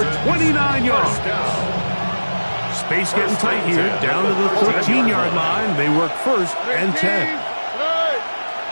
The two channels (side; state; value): both; inverted; correlation -1.00